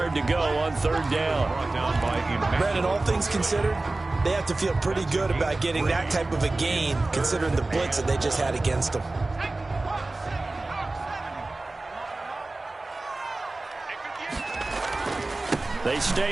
to go on third down. Brandon, all things considered, they have to feel pretty good about getting that type of a gain, considering the blitz that they just had against them. They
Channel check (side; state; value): left; quieter; 3.1 dB